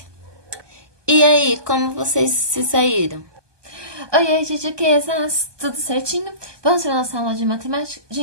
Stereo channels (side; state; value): left; late; 1.2 ms